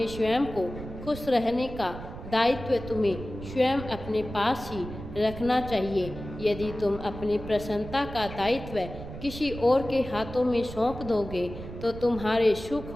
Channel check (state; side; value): noise; right; rumble, 11 dB below the sound